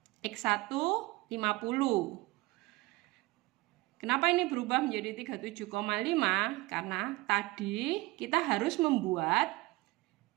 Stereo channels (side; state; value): left; quieter; 21.1 dB